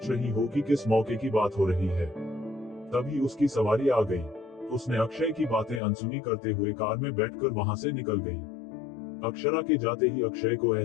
रही हो कि किस मौके की बात हो रही है। तभी उसकी सवारी आ गई। उसने अक्षय की बातें अनसुनी करते हुए कार में बैठकर वहां से निकल गई। अक्षरा के जाते ही अक्षय को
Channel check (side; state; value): right; drops out; at 5.8 s